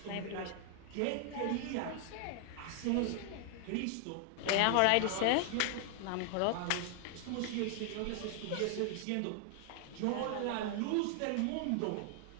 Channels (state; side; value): different; both; correlation 0.00